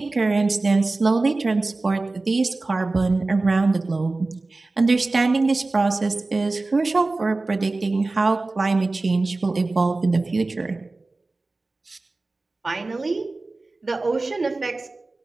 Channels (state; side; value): quieter; left; 3.3 dB